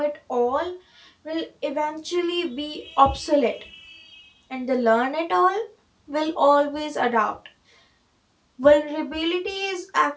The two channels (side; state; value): both; identical; correlation 1.00